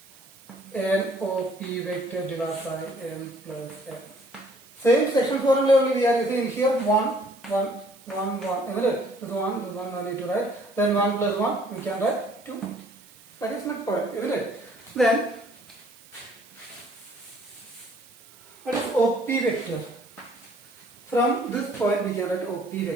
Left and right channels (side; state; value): right; noise; hiss, 24 dB below the sound